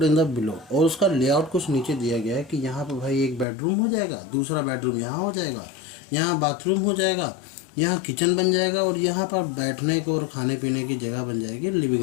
in the below, और उसका लेआउट कुछ नीचे दिया गया है कि यहाँ पर भाई एक बेडरूम हो जाएगा, दूसरा बेडरूम यहाँ हो जाएगा, यहाँ बाथरूम हो जाएगा, यहाँ किचन बन जाएगा, और यहाँ पर बैठने को और खाने पीने की जगह बन जाएगी, लिविंग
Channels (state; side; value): drops out; right; at 3.5 s